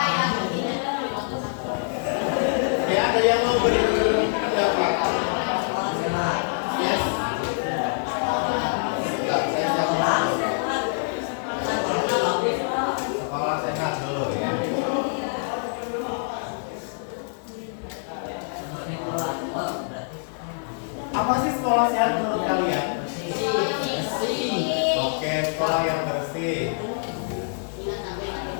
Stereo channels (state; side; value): silent; right; digital silence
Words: ya ada yang mau berpendapat? Yes. Enggak, saya siap. Sekolah sehat dulu ya. Apa sih sekolah sehat menurut kalian? Oke, sekolah yang bersih.